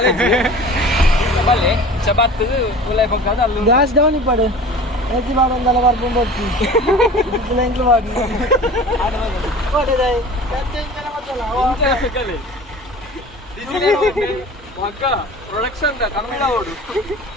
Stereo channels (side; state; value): both; normal; correlation 0.40